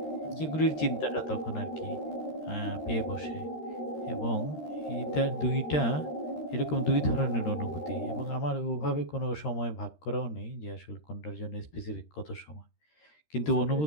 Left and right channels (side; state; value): right; late; 13 ms